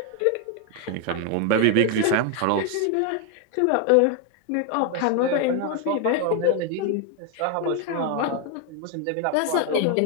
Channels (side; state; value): both; different; correlation 0.01